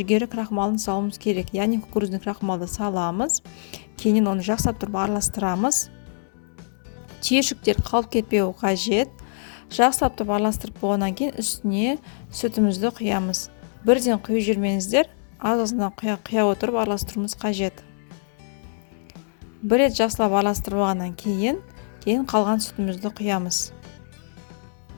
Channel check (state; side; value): silent; right; digital silence